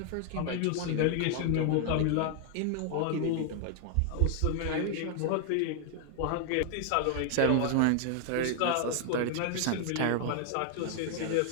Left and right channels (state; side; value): different; both; correlation 0.00